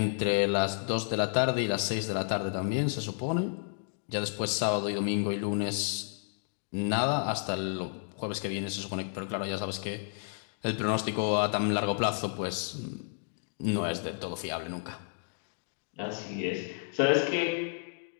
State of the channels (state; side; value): silent; right; digital silence